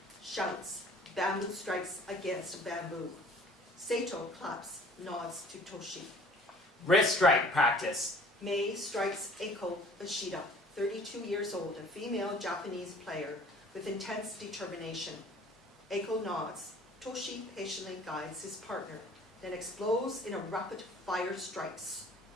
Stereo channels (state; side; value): normal; both; correlation 0.51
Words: Shouts, bamboo strikes against bamboo. Sato claps, nods to Toshi. Wrist strike practice. May strikes AIKO Ishida, 32 years old, a female Japanese player with intense determination. AIKO nods. Toshi patiently guides his partner, then explodes in a rapid fire strikes.